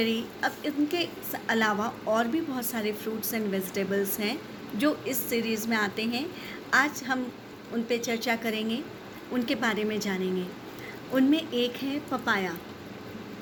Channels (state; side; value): identical; both; correlation 1.00